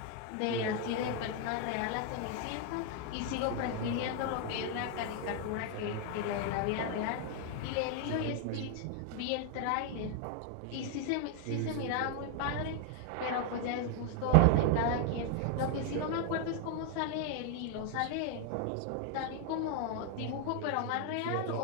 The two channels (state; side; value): different; both; correlation 0.00